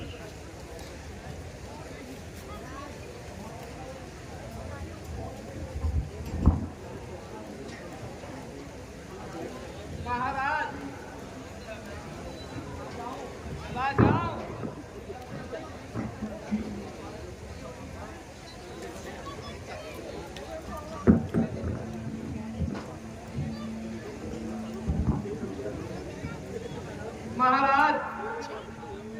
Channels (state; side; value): identical; both; correlation 1.00